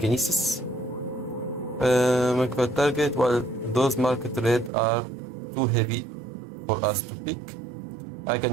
Mark a target while those marked red are too heavy for us to pick. I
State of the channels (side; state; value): left; drops out; at 4.7 s